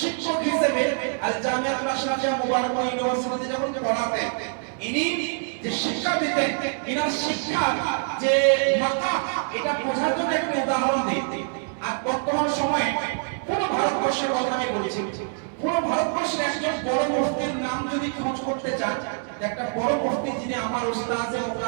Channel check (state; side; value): silent; left; digital silence